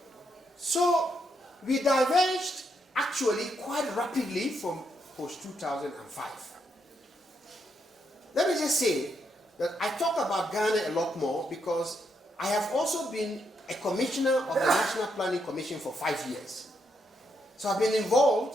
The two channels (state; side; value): normal; both; correlation 0.78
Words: so we diverged actually quite rapidly from post-2005. Let me just say that I talk about Ghana a lot more because I have also been a commissioner of the National Planning Commission for 5 years. So I've been